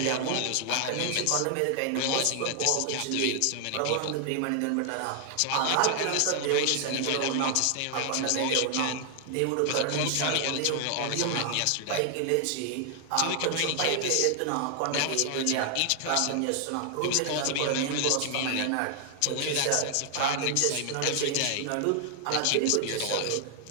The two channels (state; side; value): different; both; correlation 0.00